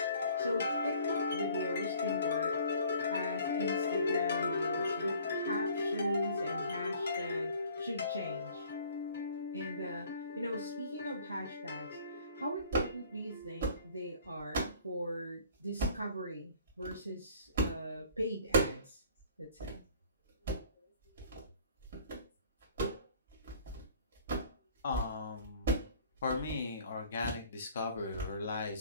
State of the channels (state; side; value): inverted; both; correlation -0.53